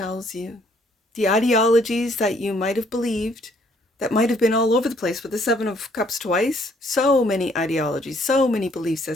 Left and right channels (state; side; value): normal; both; correlation 0.65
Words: you, the ideologies that you might have believed, that might have been all over the place with the 7 of Cups twice. So many ideologies, so many belief